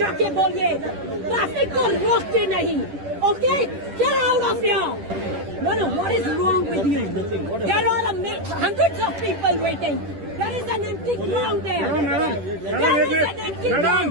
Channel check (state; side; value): late; left; 10 ms